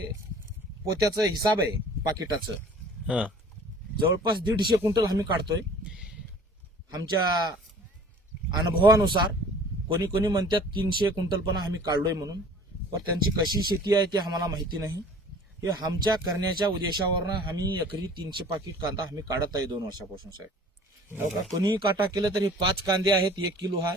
पोत्याचं हिसाब आहे पाकिटाचं. हा. जवळपास 150 क्विंटल आम्ही काढतोय. आमच्या अनुभवानुसार कोणी कोणी म्हणतात 300 क्विंटल पण आम्ही काढलोय म्हणून. पण त्यांची कशी शेती आहे ते आम्हाला माहिती नाही. हे आमच्या करण्याच्या उद्देशावरनं आम्ही एकरी 300 पाकिट कांदा आम्ही काढत आहे 2 वर्षापासून साहेब. हो का? कोणीही काटा केलं तर हे 5 कांदे आहेत 1 किलो आहे.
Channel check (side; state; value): both; normal; correlation 0.48